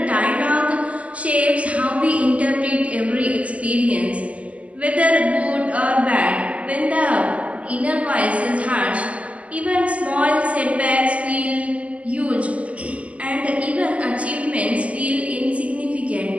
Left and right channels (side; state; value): left; late; 0.067 ms